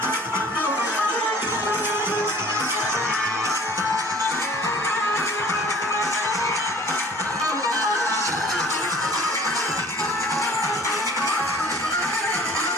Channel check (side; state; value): both; normal; correlation 0.50